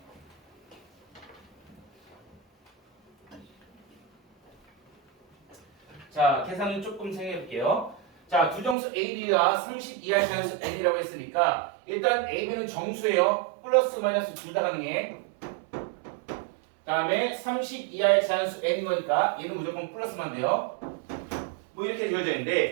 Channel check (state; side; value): drops out; left; at 8.8 s